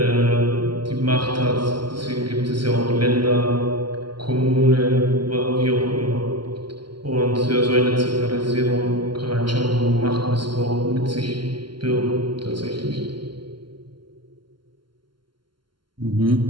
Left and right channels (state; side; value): late; left; 0.72 ms